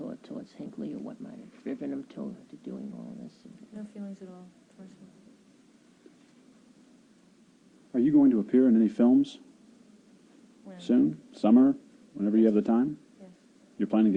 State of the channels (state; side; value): identical; both; correlation 1.00